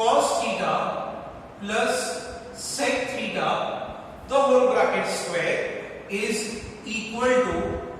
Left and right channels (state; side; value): identical; both; correlation 1.00